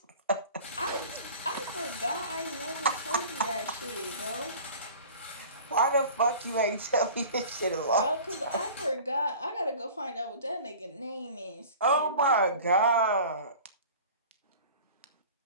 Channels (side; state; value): both; inverted; correlation -0.42